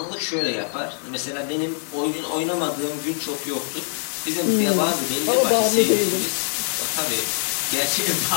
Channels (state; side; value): silent; right; digital silence